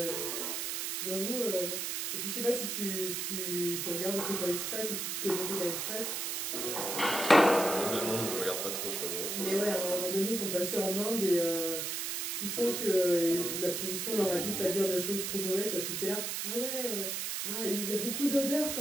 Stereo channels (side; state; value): right; noise; hiss, 2 dB below the sound